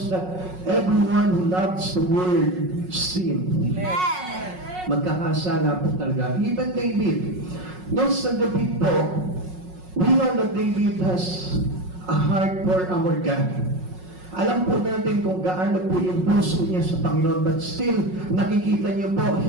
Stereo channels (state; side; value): late; left; 5.5 ms